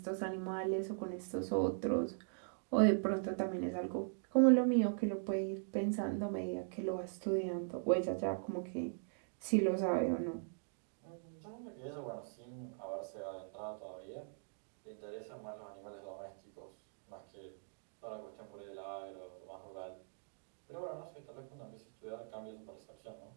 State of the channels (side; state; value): left; silent; digital silence